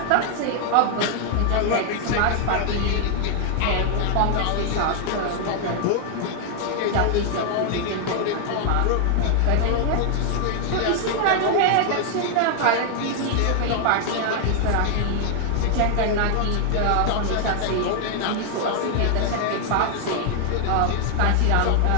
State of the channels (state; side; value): different; both; correlation 0.00